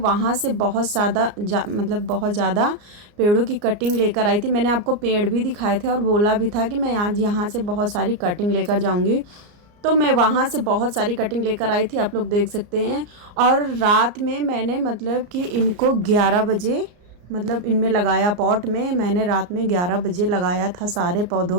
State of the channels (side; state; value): left; late; 34 ms